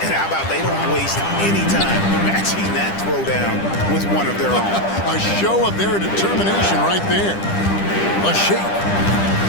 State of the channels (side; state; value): right; late; 10 ms